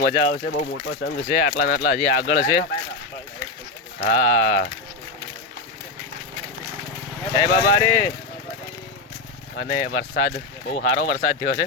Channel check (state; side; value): quieter; right; 3.3 dB